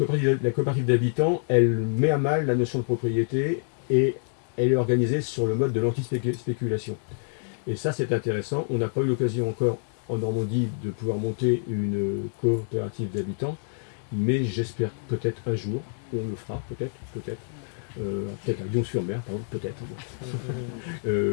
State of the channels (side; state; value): right; silent; digital silence